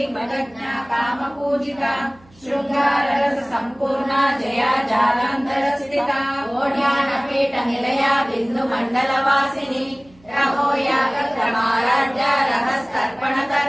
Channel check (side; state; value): right; noise; hum, 28 dB below the sound